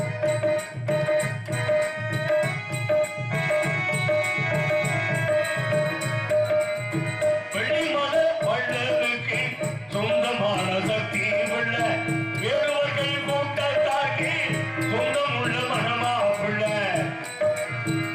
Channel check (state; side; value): identical; both; correlation 1.00